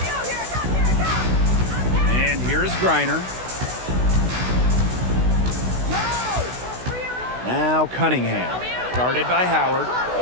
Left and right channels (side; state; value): left; late; 16 ms